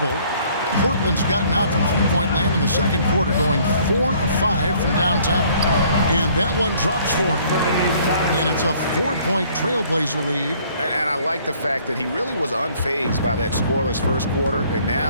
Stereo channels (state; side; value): inverted; both; correlation -0.59